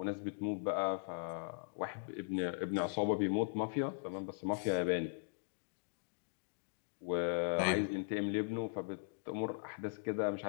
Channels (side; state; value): right; silent; digital silence